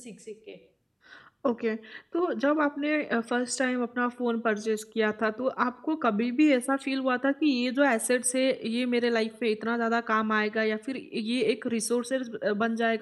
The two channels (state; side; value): identical; both; correlation 1.00